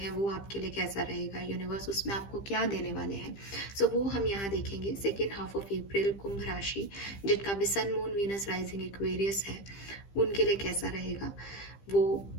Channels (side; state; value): right; late; 15 ms